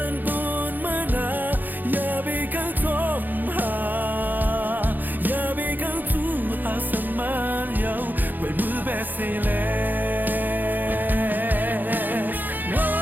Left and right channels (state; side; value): late; left; 0.087 ms